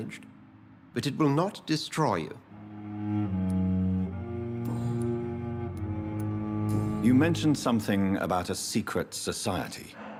but it will not destroy you. You mentioned something about a secret society.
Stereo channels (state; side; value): identical; both; correlation 1.00